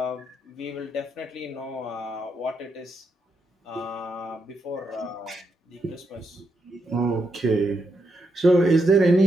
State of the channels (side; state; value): both; normal; correlation 0.81